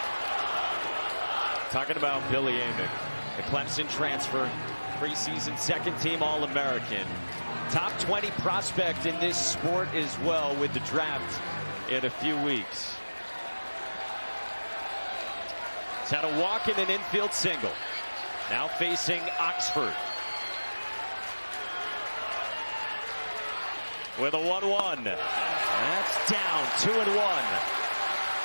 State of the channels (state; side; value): inverted; both; correlation -1.00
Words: Talking about Billy Amick, the Clemson transfer, preseason second-team All-American. Top 20 prospect in this sport as well with the draft in a few weeks. He's had a walk and an infield single. Now facing Oxford. With a 1-1. That's down, 2-1.